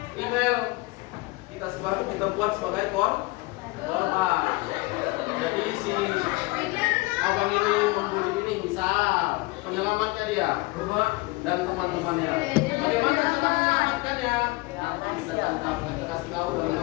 Email kita buat sebagai korban. Jadi si abang ini membuli ini misal penyelamatnya dia dan teman-temannya. Bagaimana cara menyelamatkannya? Kita tangkap, kita kasih tahu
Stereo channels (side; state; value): right; quieter; 22.7 dB